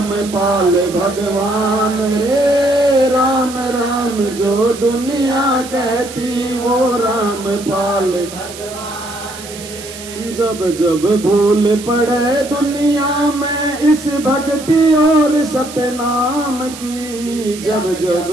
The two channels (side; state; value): right; noise; hiss, 14 dB below the sound